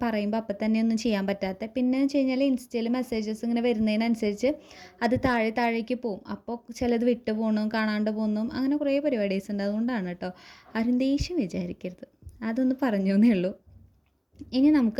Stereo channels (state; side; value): identical; both; correlation 1.00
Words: പറയുമ്പോൾ അപ്പം തന്നെ ഒന്നും ചെയ്യാൻ പറ്റാത്തത്. പിന്നെ വെച്ച് കഴിഞ്ഞാൽ ഇൻസ്റ്റയിൽ മെസ്സേജസ് ഇങ്ങനെ വരുന്നതിനനുസരിച്ച് അത് താഴേക്ക് പോവും. അപ്പോൾ ചിലത് വിട്ട് പോകണം, കാണാണ്ട് പോകുന്നു, അങ്ങനെ കുറേ പരിപാടീസ് ഉണ്ട്. അതുകൊണ്ടാണ് കേട്ടോ. ആരും ദേഷ്യം വിചാരിക്കരുത്, അതൊന്ന് പറഞ്ഞു എന്നേ ഉള്ളൂ. ഇനി